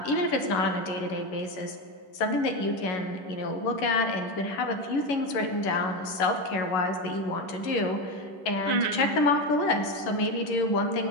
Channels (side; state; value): right; late; 11 ms